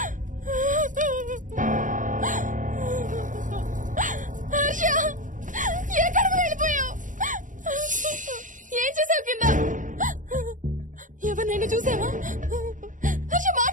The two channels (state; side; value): late; left; 0.38 ms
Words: హర్ష ఎక్కడికి వెళ్ళిపోయావు? ఏం చేసావు కింద? ఎవరినైనా చూసావా? హర్ష